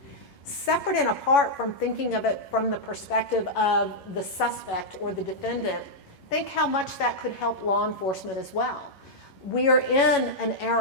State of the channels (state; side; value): late; right; 11 ms